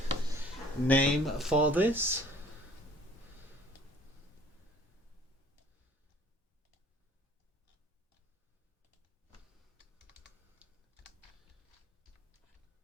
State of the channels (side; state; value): both; normal; correlation 0.53